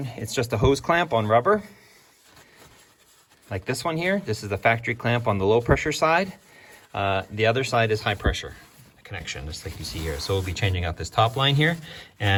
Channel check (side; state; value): both; identical; correlation 1.00